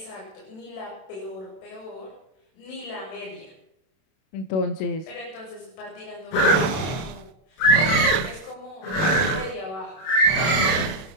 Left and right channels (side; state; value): right; late; 32 ms